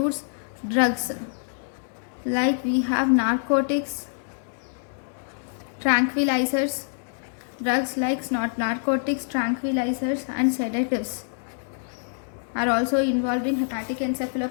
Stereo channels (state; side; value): silent; right; digital silence